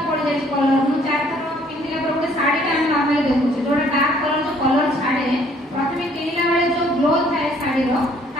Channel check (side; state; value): both; normal; correlation 0.61